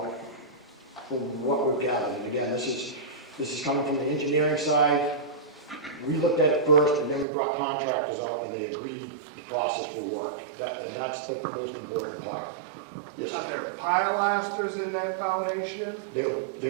what we've gathered. And again, this is coming from the engineering side. We looked at it first, and then we brought contractors out, and they agreed the process will work. And that's the most important part. Yes. Are there pilasters in that foundation? There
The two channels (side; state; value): left; drops out; at 7.2 s